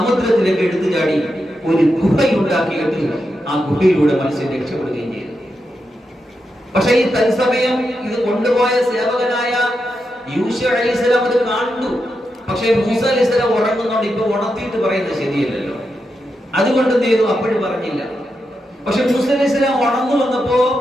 എടുത്തു ചാടി ഒരു ഗുഹയുണ്ടാക്കിയിട്ട് ആ ഗുഹയിലൂടെ മത്സ്യം രക്ഷപ്പെടുകയും ചെയ്തു. പക്ഷെ ഈ തത്സമയം ഇത് കൊണ്ടുപോയ സേവകനായ യൂശഅ അലൈഹിസ്സലാം അത് കണ്ടു. പക്ഷെ മൂസ അലൈഹിസ്സലാം ഉറങ്ങുന്നോണ്ട് ഇപ്പൊ ഉണർത്തിയിട്ട് പറയുന്നത് ശരിയല്ലല്ലോ, അതുകൊണ്ട് എന്ത് ചെയ്തു, അപ്പോഴും പറഞ്ഞില്ല. പക്ഷെ മൂസ അലൈഹിസ്സലാം ഉണർന്നു വന്നപ്പോ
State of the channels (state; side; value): normal; both; correlation 0.86